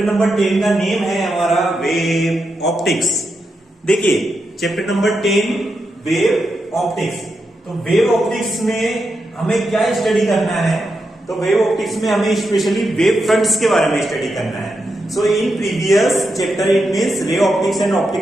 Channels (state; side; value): normal; both; correlation 0.86